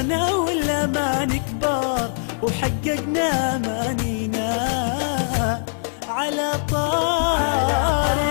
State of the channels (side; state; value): right; silent; digital silence